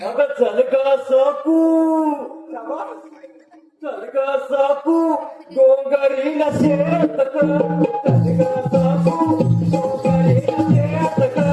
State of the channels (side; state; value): both; identical; correlation 1.00